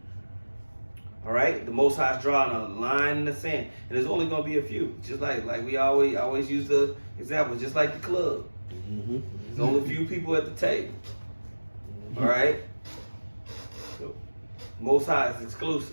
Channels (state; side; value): inverted; both; correlation -1.00